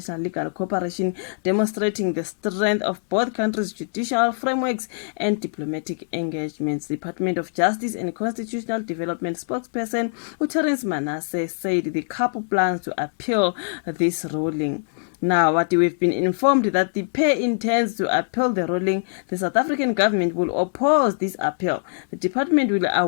legal cooperation, demonstrating the strength of both countries' judicial frameworks and diplomatic engagements. The Department of Justice and Constitutional Development spokesperson Terence Manasseh said the couple plans to appeal this ruling. Now, what we've been informed that the pair intends to appeal the ruling. The South African government will oppose this appeal. The department will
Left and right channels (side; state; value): right; silent; digital silence